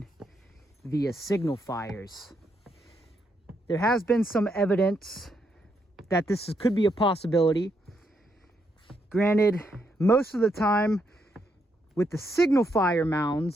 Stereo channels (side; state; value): both; normal; correlation 0.78